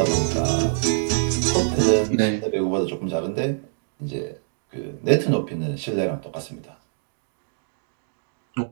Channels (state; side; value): silent; left; digital silence